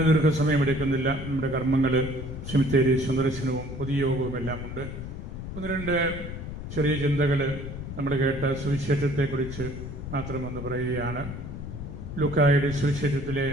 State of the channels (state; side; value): noise; left; rumble, 8 dB below the sound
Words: ദീർഘസമയമെടുക്കുന്നില്ല. നമ്മുടെ കർമ്മങ്ങൾ, സെമിത്തേരി സന്ദർശനവും പൊതുയോഗവും എല്ലാം ഉണ്ട്. ഒന്ന് രണ്ട് ചെറിയ ചിന്തകൾ നമ്മൾ കേട്ട സുവിശേഷത്തെക്കുറിച്ച് മാത്രമൊന്ന് പറയുകയാണ്. ലൂക്കായുടെ സുവിശേഷത്തിലെ